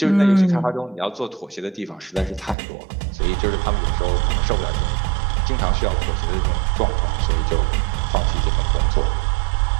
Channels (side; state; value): left; drops out; at 2.6 s